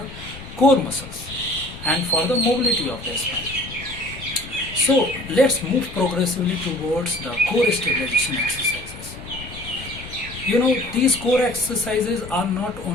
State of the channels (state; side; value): noise; left; rumble, 14 dB below the sound